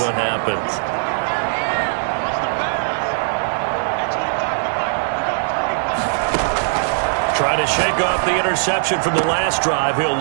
what happens. Trying to shake off the interception from the last drive. He'll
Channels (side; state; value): left; silent; digital silence